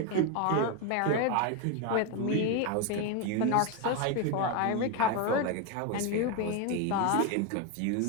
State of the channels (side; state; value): both; different; correlation 0.02